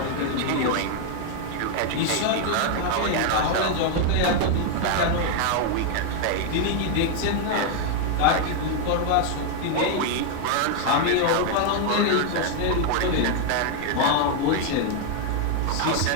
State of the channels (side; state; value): both; different; correlation 0.00